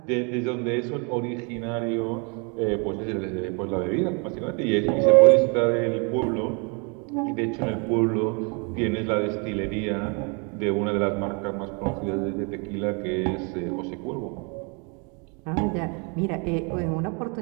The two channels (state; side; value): quieter; left; 34.1 dB